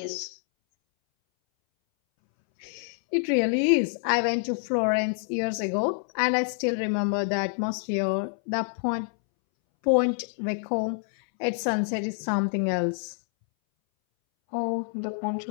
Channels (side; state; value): right; silent; 60 dB below the other